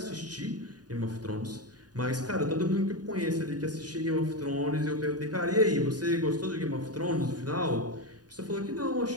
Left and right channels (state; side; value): late; left; 0.69 ms